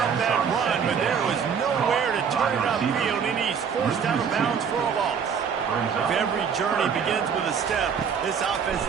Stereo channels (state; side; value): quieter; left; 6.8 dB